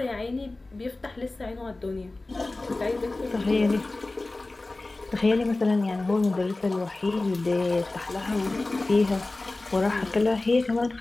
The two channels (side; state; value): right; quieter; 3.1 dB